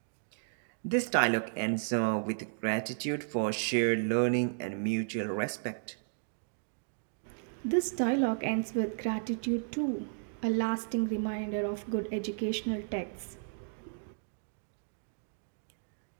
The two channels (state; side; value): silent; left; digital silence